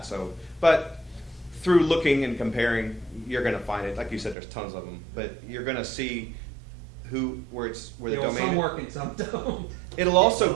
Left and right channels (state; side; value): drops out; left; at 4.4 s